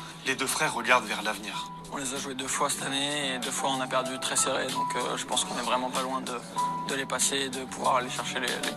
les 2 frères regardent vers l'avenir. On les a joués 2 fois cette année et 2 fois on a perdu très serré, donc je pense qu'on est vraiment pas loin de les passer et de pouvoir aller chercher les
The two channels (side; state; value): both; identical; correlation 1.00